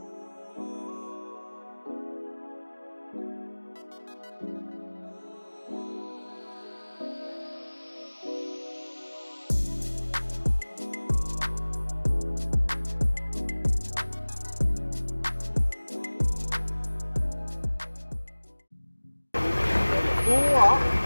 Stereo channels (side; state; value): both; inverted; correlation -1.00